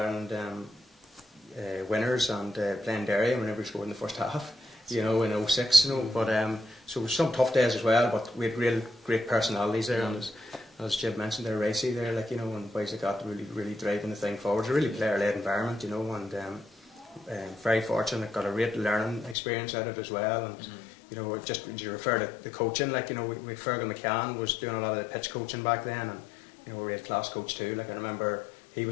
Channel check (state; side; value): drops out; right; at 19.4 s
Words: winners, and playing Derry whenever we scored in the first half, you know, in 06, you know, but so some tough days as well, but we had real great personalities there, and as Jib mentioned, they're racy there, like, you know, and boys that got really driving the thing forward. It's a really player-led environment, you know, and very fortunate, got a great learning experience out of it as well, and you know, just you refer to the coaching, like, you know, we Fergal McCann was doing a lot of the pitch coaching back then, and, you know, we had class coach too. Like, I remember he